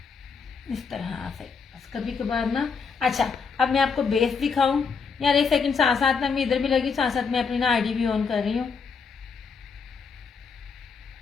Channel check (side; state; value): right; quieter; 5.5 dB